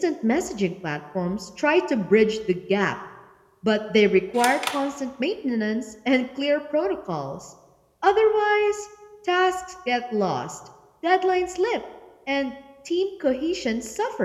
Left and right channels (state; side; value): identical; both; correlation 1.00